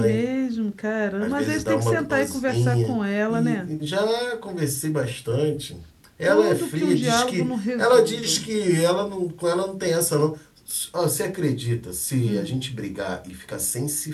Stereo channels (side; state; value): both; identical; correlation 1.00